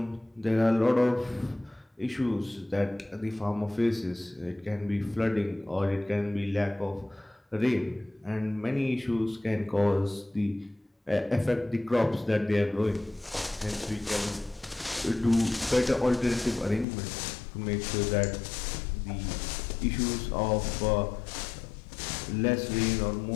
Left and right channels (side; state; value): right; drops out; at 16.9 s